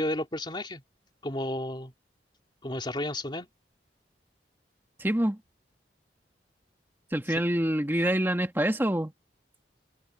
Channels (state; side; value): normal; both; correlation 0.80